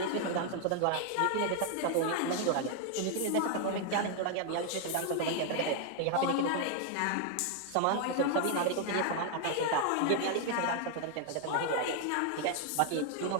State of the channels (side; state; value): both; different; correlation 0.00